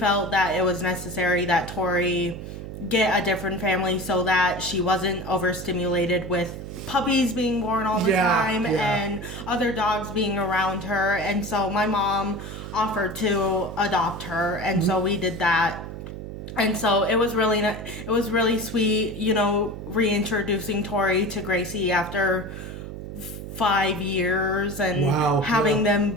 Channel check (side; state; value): right; noise; hum, 9 dB below the sound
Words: that it was necessary that Tori get a different family so that she wasn't overstimulated with puppies being born all the time and other dogs being around her. And so my mom offered to adopt her, and so we did that. And so it was really sweet, you know, reintroducing Tori to Gracie after 5 years and having them